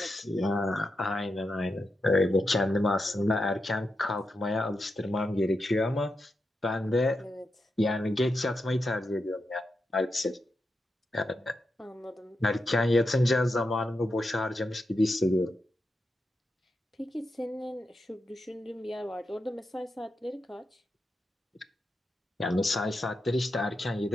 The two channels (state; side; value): normal; both; correlation 0.87